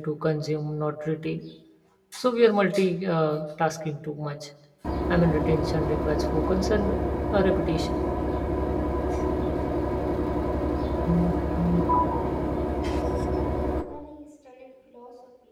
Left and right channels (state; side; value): identical; both; correlation 1.00